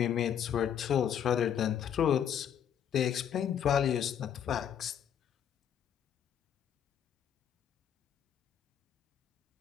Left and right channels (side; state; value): right; quieter; 9.0 dB